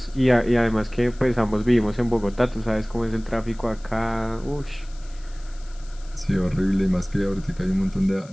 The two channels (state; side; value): noise; left; hiss, 25 dB below the sound